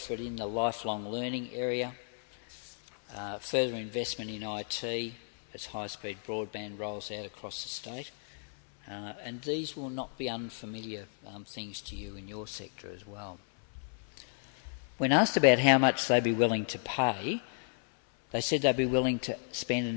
in the lifelong learning area, further investment in IT as high-speed broadband rolls out across the state. And these will not be unfamiliar things to you in your sector as well. When asked about how much they'd be willing to pay, they said they'd be willing to spend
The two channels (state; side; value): silent; right; 56 dB below the other